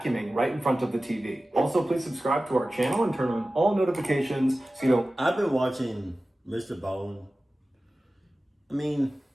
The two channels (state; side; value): normal; both; correlation 0.96